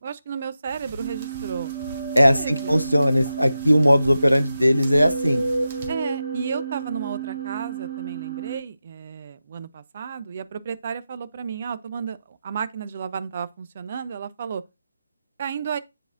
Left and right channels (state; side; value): inverted; both; correlation -0.90